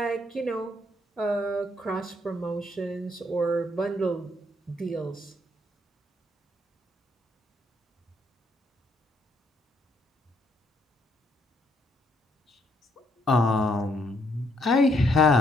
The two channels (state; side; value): normal; both; correlation 0.71